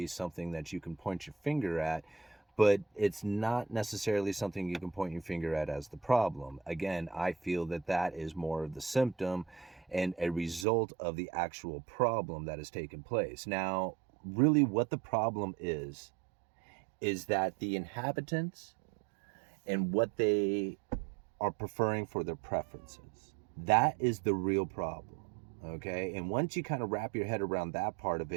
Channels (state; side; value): drops out; left; at 10.7 s